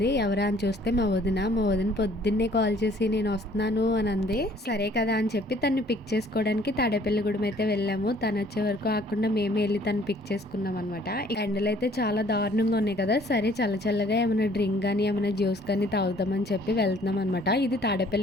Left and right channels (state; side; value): normal; both; correlation 0.58